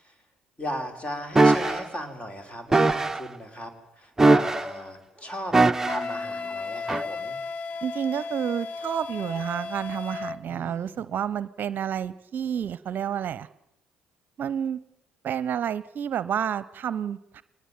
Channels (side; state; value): left; quieter; 3.2 dB